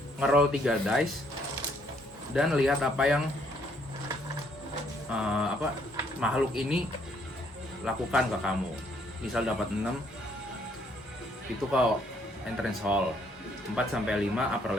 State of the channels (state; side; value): normal; both; correlation 0.67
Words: ngeroll 3 dice dan lihat apa yang makhluk ini lakukan ke kamu. Misal dapat 6, itu kalau entrance hall. 4 sampai 5 upper